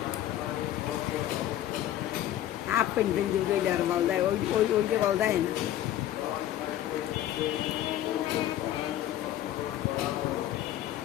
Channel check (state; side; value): quieter; right; 12.5 dB